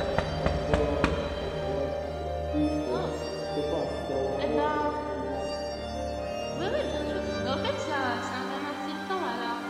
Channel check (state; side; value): identical; both; correlation 1.00